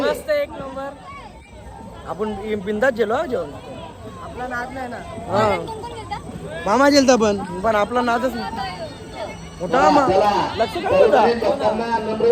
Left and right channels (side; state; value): both; identical; correlation 1.00